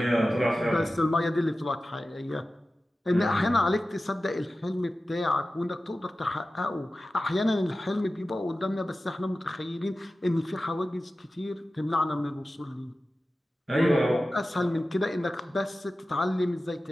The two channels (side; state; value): both; normal; correlation 0.95